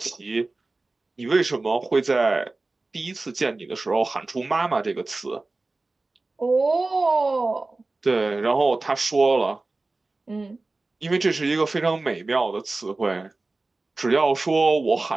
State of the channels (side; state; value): left; quieter; 3.3 dB